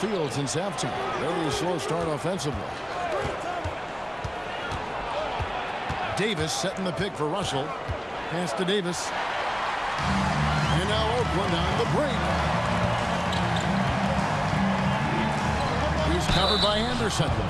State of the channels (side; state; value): both; identical; correlation 1.00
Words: since halftime. Very slow start offensively. Davis setting the pick for Russell. Pass to Davis. And now Oakland on the break. He's covered by Anderson.